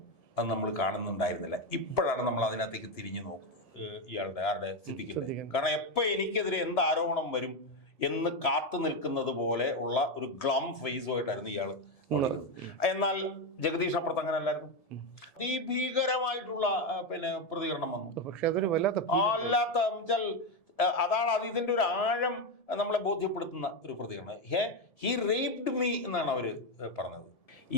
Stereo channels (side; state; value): right; late; 1.7 ms